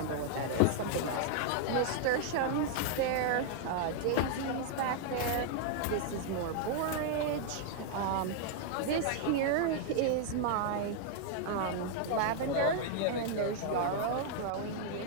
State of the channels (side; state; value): both; different; correlation 0.00